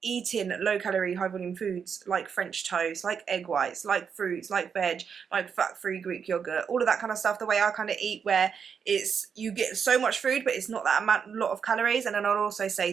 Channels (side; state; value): left; quieter; 6.8 dB